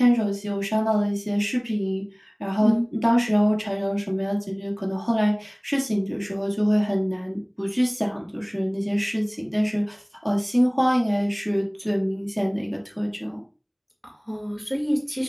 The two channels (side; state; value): both; identical; correlation 1.00